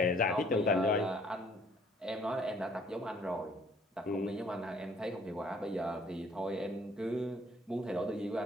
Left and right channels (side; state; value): both; normal; correlation 0.59